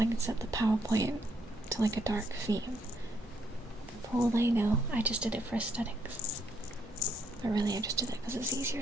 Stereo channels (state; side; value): normal; both; correlation 0.73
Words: can set the PowerPoint to like a dark theme. For all they know, I just did it for aesthetics. But really I just did it because it's easier